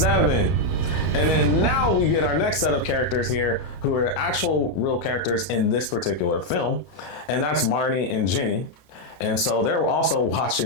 And then now we get our next set of characters here who are actual real characters in this particular film. And that's Marnie and Jenny. And so they're also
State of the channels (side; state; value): right; late; 31 ms